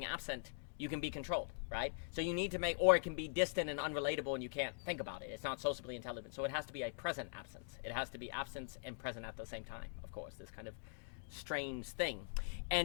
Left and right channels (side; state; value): right; silent; digital silence